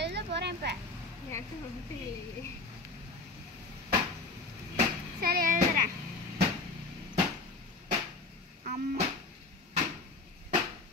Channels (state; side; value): quieter; right; 3.5 dB